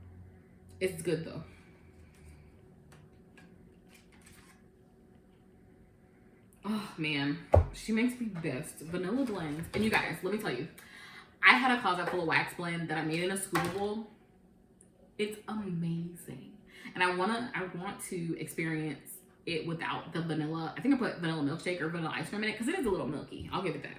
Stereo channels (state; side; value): identical; both; correlation 1.00